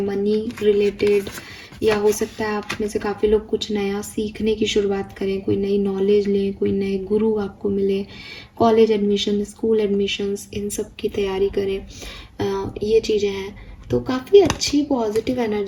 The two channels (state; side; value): identical; both; correlation 1.00